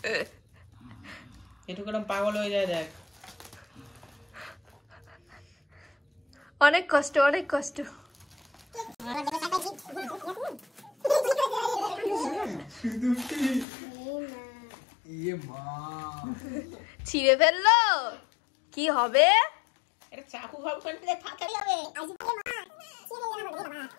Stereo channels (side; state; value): right; drops out; at 13.7 s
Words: কেরম পাগল হয়ে যায় দেখ। অনেক কষ্ট, অনেক কষ্ট। ইয়ে মা ছিঁড়ে ফেললো, কি হবে? এটা চাকু ভাব করতে ফাটাই হবে।